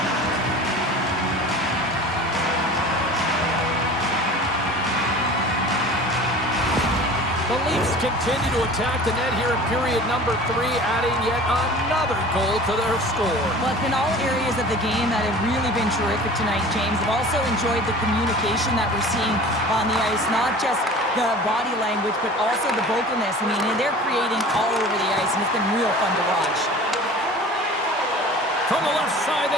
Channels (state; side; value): normal; both; correlation 0.41